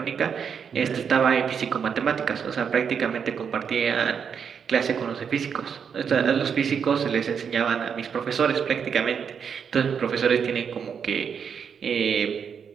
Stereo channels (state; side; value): quieter; left; 7.0 dB